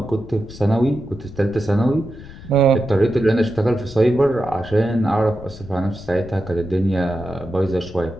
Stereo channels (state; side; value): noise; left; rumble, 16 dB below the sound